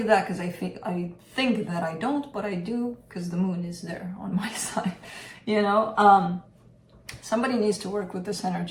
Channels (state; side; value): identical; both; correlation 1.00